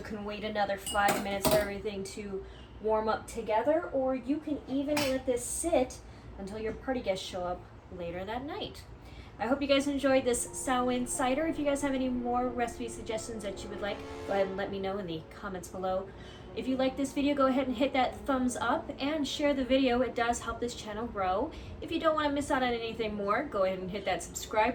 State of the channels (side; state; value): both; identical; correlation 1.00